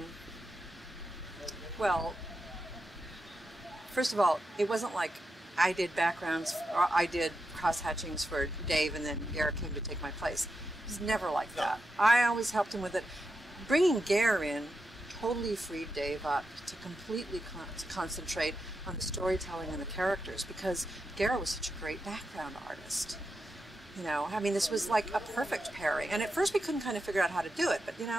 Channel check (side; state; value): both; normal; correlation 0.87